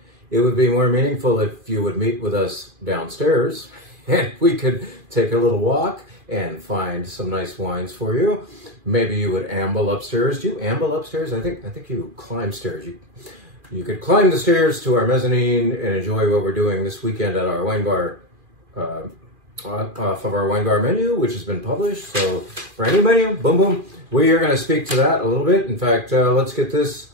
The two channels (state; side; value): late; left; 2.4 ms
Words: It would be more meaningful if you would meet with us downstairs and we could take a little walk and find some nice wines for you. Maybe you would amble upstairs. Do you amble upstairs? I think you climb stairs. You could climb the stairs to our mezzanine and enjoy what we're doing this weekend at our wine bar, off of our wine bar menu, which has been published. So for any menu, boom, boom, we are going to speak to that a little bit. In fact, let's get this